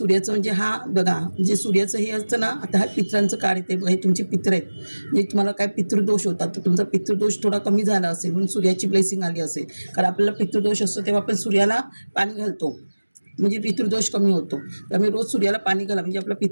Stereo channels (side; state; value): both; inverted; correlation -1.00